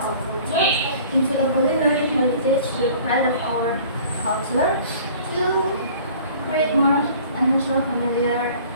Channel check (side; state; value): both; inverted; correlation -0.49